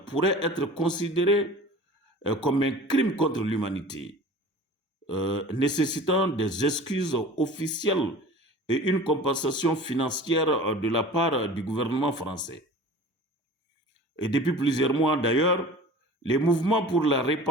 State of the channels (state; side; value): normal; both; correlation 0.41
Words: pourraient être considérées comme un crime contre l'humanité, nécessitant des excuses officielles et une compensation financière de la part du gouvernement français. Et depuis plusieurs mois d'ailleurs, le mouvement pour la